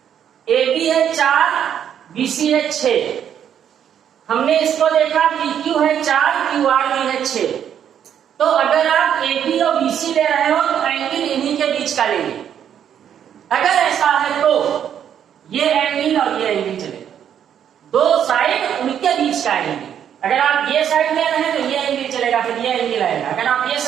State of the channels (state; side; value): quieter; left; 9.2 dB